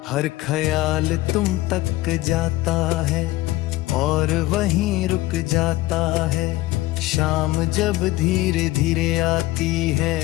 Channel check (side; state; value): right; quieter; 17.5 dB